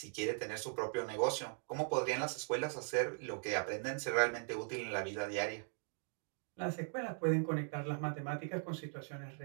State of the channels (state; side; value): silent; left; 51 dB below the other